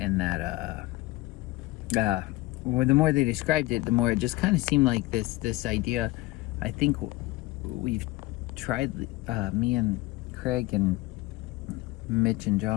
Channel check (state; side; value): quieter; right; 20.0 dB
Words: that well, the more they described it, the more it just kind of seemed like this idea. I think we've tried, me and Craig and Mitch and